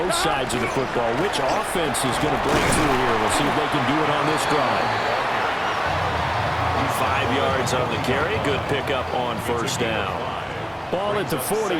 sides of the football. Which offense is going to break through here? We'll see if they can do it on this drive. 5 yards on the carry. Good pickup on first down. Ball at the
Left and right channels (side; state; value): both; identical; correlation 1.00